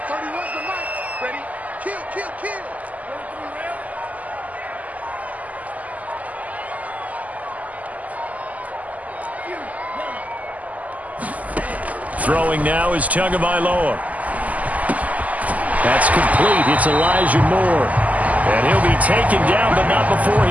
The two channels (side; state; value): left; late; 0.075 ms